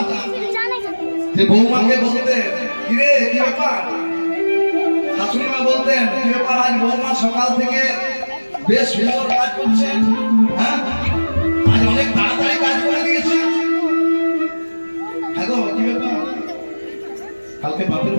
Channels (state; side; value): inverted; both; correlation -1.00